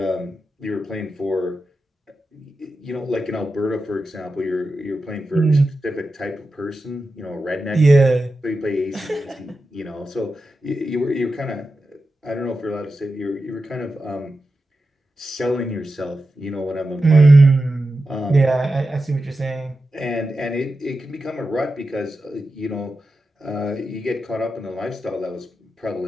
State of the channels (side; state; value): both; normal; correlation 0.91